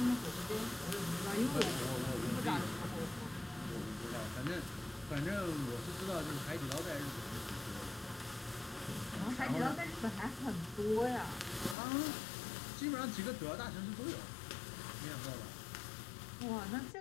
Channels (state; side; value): drops out; right; at 11.8 s